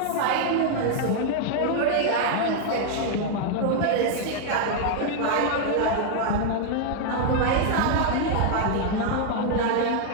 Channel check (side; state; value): both; different; correlation 0.00